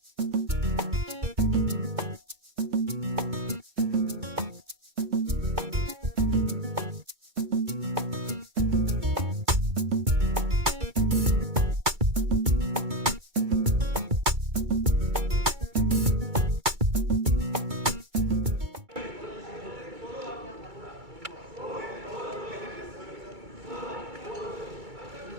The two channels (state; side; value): late; left; 2.3 ms